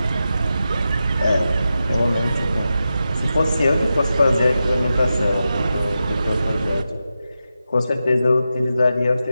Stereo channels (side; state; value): both; inverted; correlation -0.90